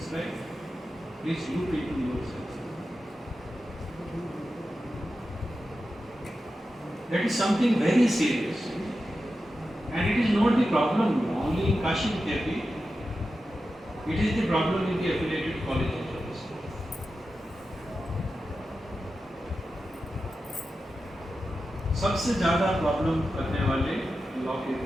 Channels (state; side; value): normal; both; correlation 0.91